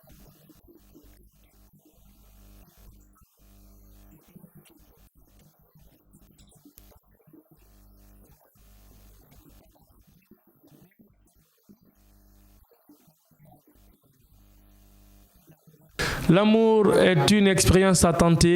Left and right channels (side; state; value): both; identical; correlation 1.00